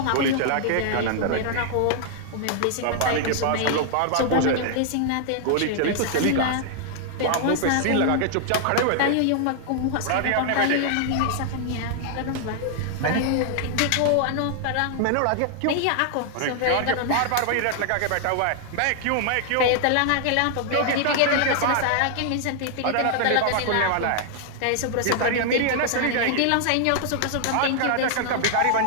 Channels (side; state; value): both; different; correlation 0.00